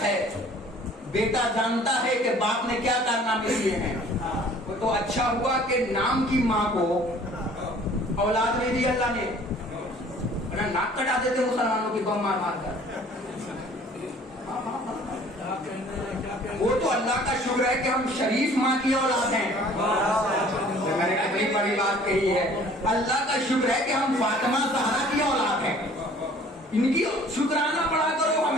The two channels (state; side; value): normal; both; correlation 0.52